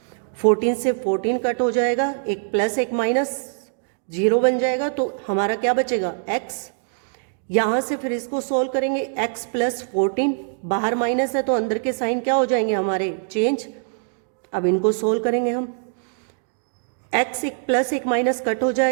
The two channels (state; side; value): silent; left; digital silence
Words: 14 से 14 कट हो जाएगा, एक प्लस एक माइनस 0 बन जाएगा, तो हमारा क्या बचेगा x। यहाँ से फिर इसको सोल्व करेंगे x प्लस 14, बाहर माइनस है तो अंदर के साइन क्या हो जाएंगे हमारे चेंज। अब इनको सोल्व करेंगे हम, x एक प्लस एक माइनस कट हो